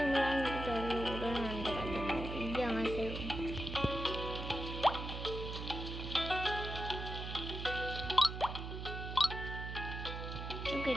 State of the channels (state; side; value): noise; right; hum, 6 dB below the sound